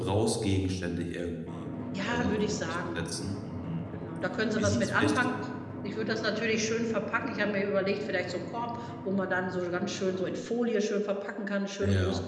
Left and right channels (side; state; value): both; identical; correlation 1.00